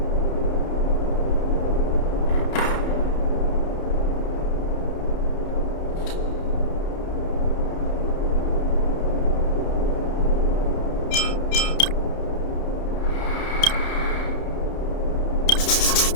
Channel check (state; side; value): late; right; 30 ms